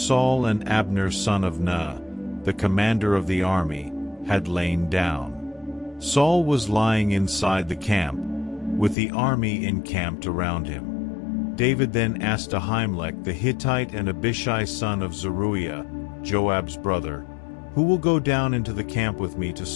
and Abner son of Ner, the commander of the army, had lain down. Saul was lying inside the camp, with the army encamped around him. David then asked Ahimelech the Hittite and Abishai son of Zeruiah, Joab's brother, "Who will go down into the camp with me to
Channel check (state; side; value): drops out; right; at 9.0 s